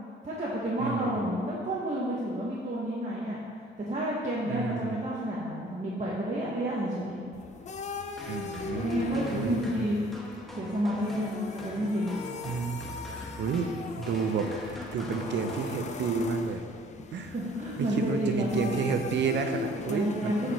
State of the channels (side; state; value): both; normal; correlation 0.55